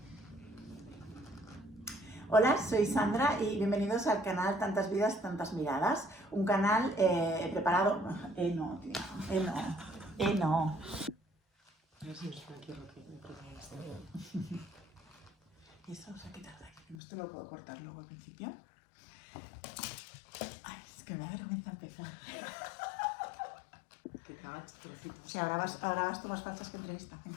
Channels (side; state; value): right; drops out; at 16.9 s